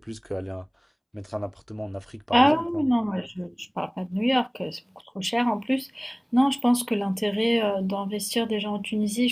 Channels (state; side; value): identical; both; correlation 1.00